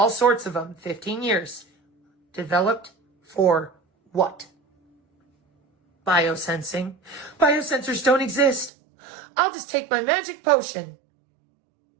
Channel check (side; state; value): left; drops out; at 8.7 s